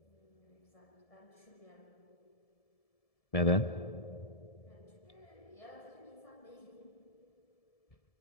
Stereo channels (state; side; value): late; right; 1.7 ms